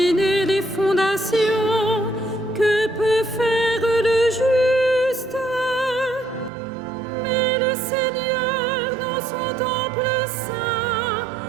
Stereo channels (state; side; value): drops out; left; at 6.5 s